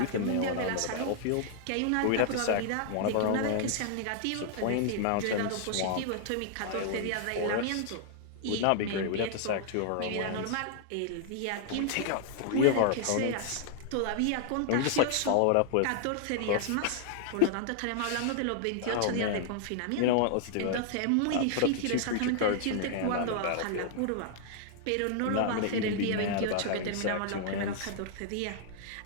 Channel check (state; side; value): different; both; correlation -0.01